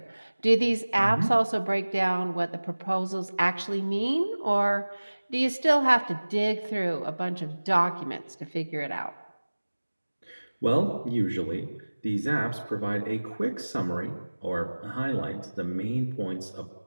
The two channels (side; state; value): both; inverted; correlation -1.00